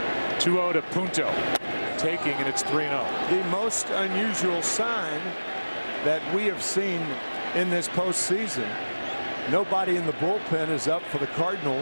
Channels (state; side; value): inverted; both; correlation -1.00